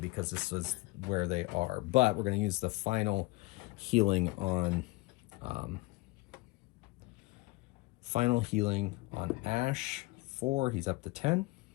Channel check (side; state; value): right; quieter; 22.9 dB